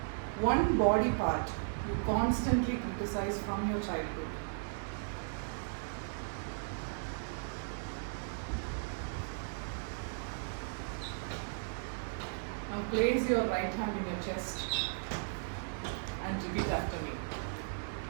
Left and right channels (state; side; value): silent; left; digital silence